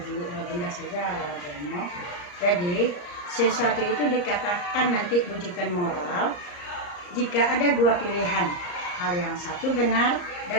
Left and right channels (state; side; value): late; right; 34 ms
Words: benda saja Bu Emo. Jadi sesuatu itu dikatakan nanti bujukan moral jika ada dua pilihan, hal yang satu benar